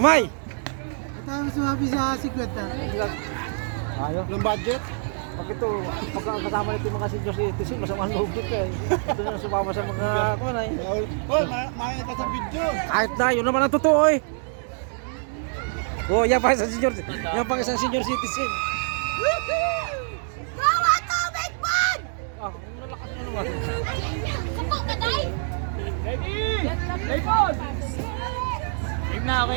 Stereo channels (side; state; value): left; silent; 61 dB below the other